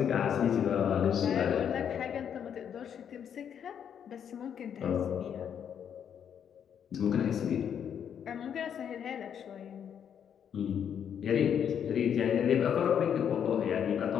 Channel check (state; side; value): quieter; right; 8.4 dB